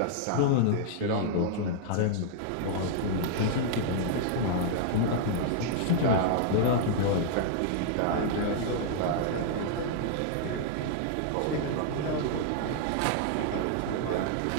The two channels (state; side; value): different; both; correlation -0.01